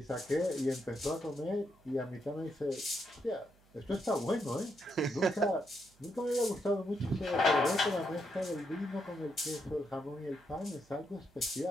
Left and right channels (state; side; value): noise; right; hum, 30 dB below the sound